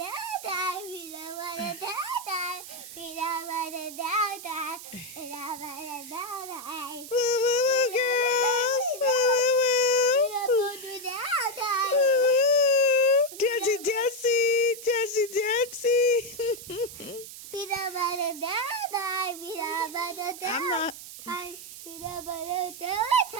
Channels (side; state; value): right; noise; hiss, 13 dB below the sound